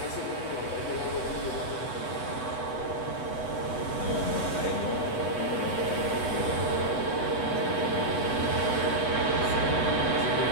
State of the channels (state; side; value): late; right; 8.0 ms